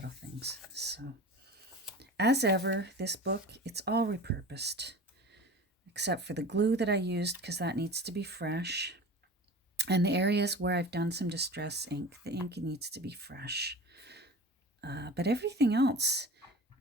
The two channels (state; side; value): normal; both; correlation 0.36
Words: things. So, as ever, this book, it's all repurposed. Except for the glue that I used, because that needs to be fresh. And the areas where I've done some distress ink, the ink needs to be fresh. But everything else,